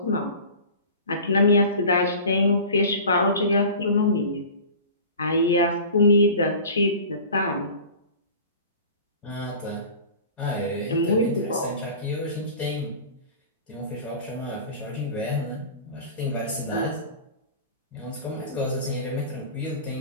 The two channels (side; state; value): both; inverted; correlation -0.38